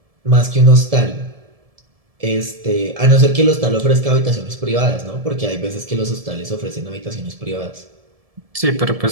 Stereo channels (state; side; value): late; left; 1.7 ms